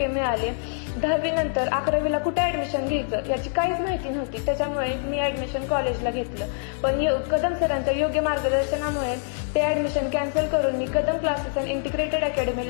मिळाले. 10वी नंतर 11वीला कुठे ऍडमिशन घ्यायचं याची काहीच माहिती नव्हती, त्याच्यामुळे मी ऍडमिशन कॉलेजला घेतलं. पण कदम सरांच्या योग्य मार्गदर्शनामुळे ते ऍडमिशन कॅन्सल करून मी कदम क्लासेस अँड इंटिग्रेटेड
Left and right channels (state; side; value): silent; right; digital silence